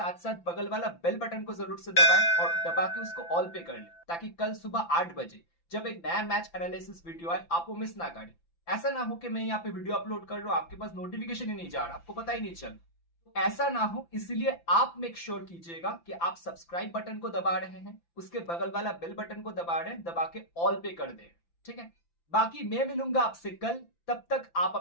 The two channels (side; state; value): right; late; 5.9 ms